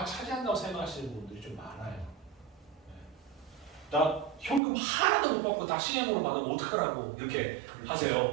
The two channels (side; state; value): left; drops out; at 4.6 s